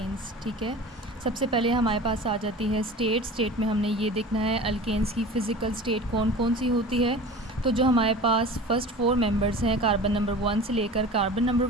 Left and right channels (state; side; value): normal; both; correlation 0.37